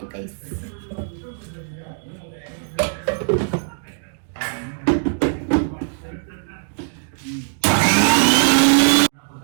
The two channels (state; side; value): silent; left; digital silence